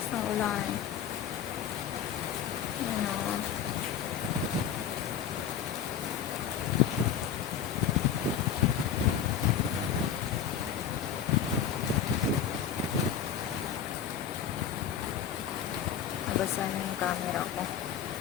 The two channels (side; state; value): right; quieter; 8.5 dB